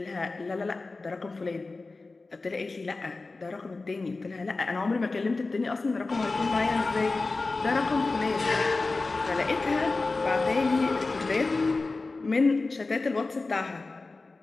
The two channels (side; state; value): right; quieter; 3.6 dB